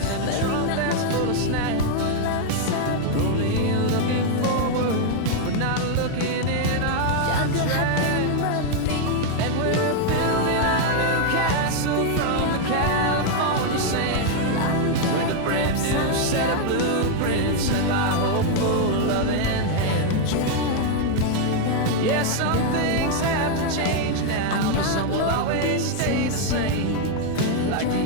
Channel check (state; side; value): different; both; correlation 0.00